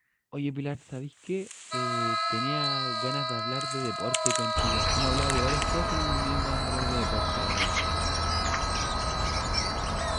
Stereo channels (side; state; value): both; identical; correlation 1.00